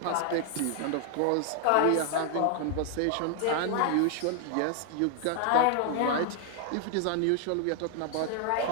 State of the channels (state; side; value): different; both; correlation 0.00